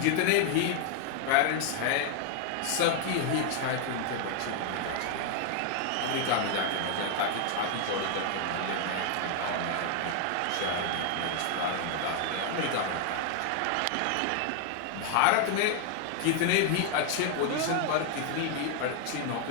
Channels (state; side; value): different; both; correlation 0.00